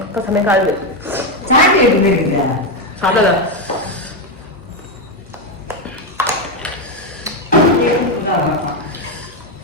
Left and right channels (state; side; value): normal; both; correlation 0.07